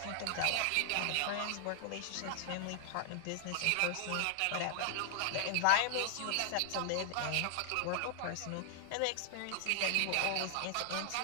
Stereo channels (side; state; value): both; different; correlation 0.00